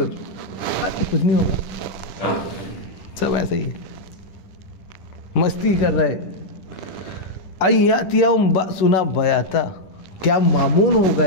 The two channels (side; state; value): right; late; 10 ms